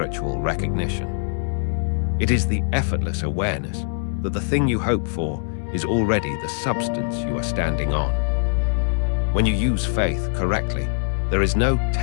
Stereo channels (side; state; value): right; silent; 62 dB below the other